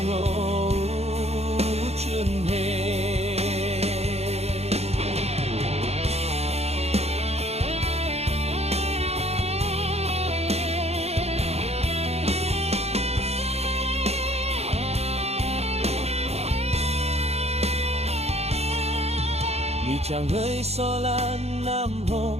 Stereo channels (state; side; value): late; left; 0.30 ms